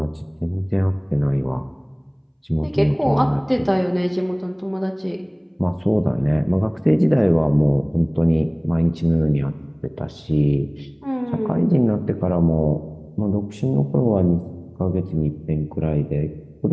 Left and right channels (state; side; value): identical; both; correlation 1.00